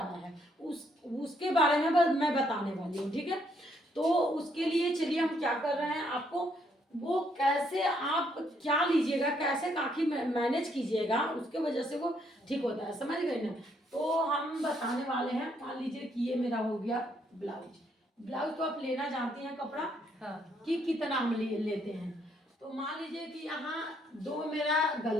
है, उसके बारे में मैं बताने वाली हूँ। ठीक है, तो उसके लिए चलिए हम क्या कर रहे हैं, आपको वो कैसे आप क्या लीजिएगा, कैसे काखी मैनेज कीजिएगा, उसके वजह से वो ठीक होता है। समझ गए ना। तो हम बताने वाले हैं। मान लीजिए कि ये मेरा हो गया ब्लाउज। ब्लाउज तो आप लेना जानती हैं कपड़ा, हाँ, कि कितना हम लेते हैं। तो मान लीजिए कि यहाँ 2 मेरा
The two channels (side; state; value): both; normal; correlation 0.71